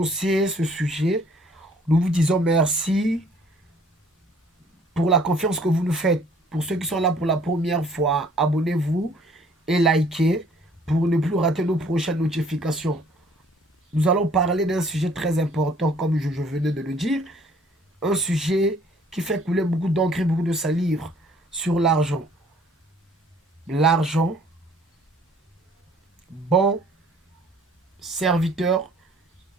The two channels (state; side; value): normal; both; correlation 0.58